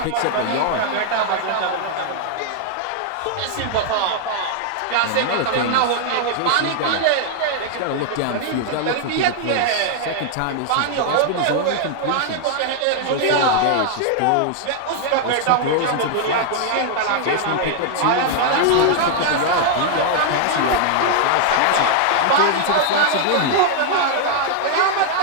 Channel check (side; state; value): both; different; correlation -0.01